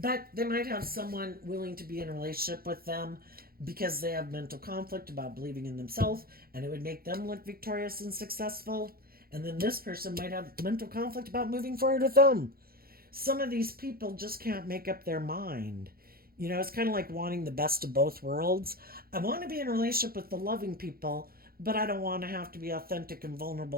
they might have someone willing to be in a relationship with them because they have mental conflict about believing in themselves and it would make them look victorious and successful. And then this person might have mental conflict about moving forward with them. Some of these people just can't make up their mind. It's kind of like wanting the best of both worlds. I want to be in a relationship with the loving people, but I don't want to have to be authentic and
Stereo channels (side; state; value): left; late; 0.44 ms